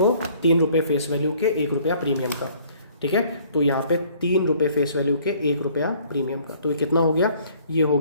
3 रुपये फेस वैल्यू के 1 रुपया प्रीमियम का, ठीक है। तो यहाँ पे 3 रुपये फेस वैल्यू के 1 रुपया प्रीमियम का, तो ये कितना हो गया, ये हो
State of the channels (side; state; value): both; inverted; correlation -0.58